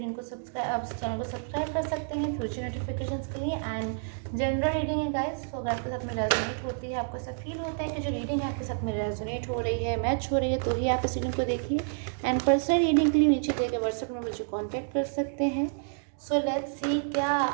को आप इस चैनल को सब्सक्राइब कर सकते हैं फ्यूचर नोटिफिकेशंस के लिए। एंड जनरल रीडिंग है गाइस, तो अगर आपके साथ में रेजोनेट होती है, आपको ऐसा फील होता है कि जो रीडिंग है आपके साथ में रेजोनेट हो रही है, मैच हो रही है, तो ही आप इस रीडिंग को देखिए। एंड पर्सनल रीडिंग के लिए नीचे दिए गए व्हाट्सएप में मुझे कॉन्टैक्ट कर सकते हैं। सो लेट्स सी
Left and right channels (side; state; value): left; silent; digital silence